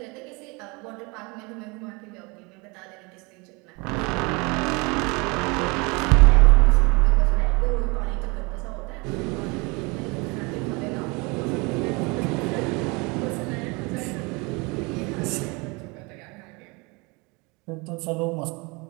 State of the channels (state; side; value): quieter; left; 27.9 dB